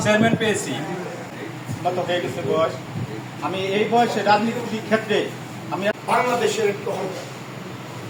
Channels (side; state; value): both; identical; correlation 1.00